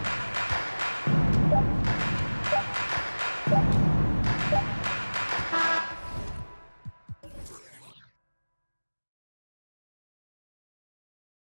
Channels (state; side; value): inverted; both; correlation -1.00